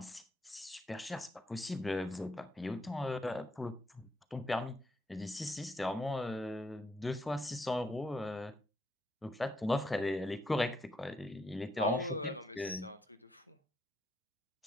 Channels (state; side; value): normal; both; correlation 0.77